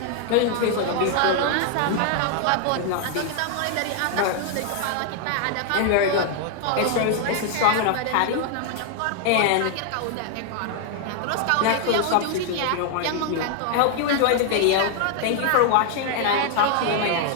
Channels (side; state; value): both; different; correlation 0.00